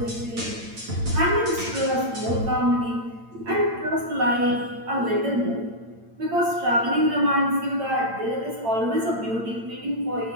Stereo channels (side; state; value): left; late; 8.8 ms